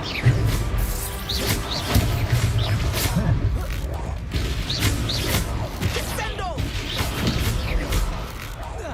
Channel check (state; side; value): identical; both; correlation 1.00